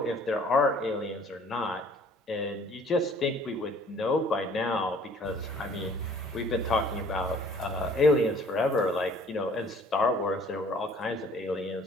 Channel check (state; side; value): normal; both; correlation 0.54